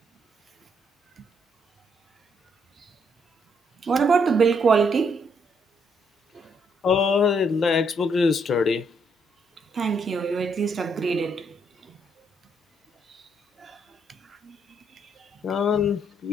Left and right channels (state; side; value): normal; both; correlation 0.72